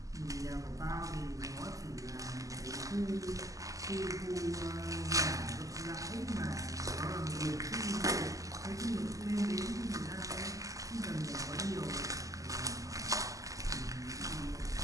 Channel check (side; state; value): left; late; 0.16 ms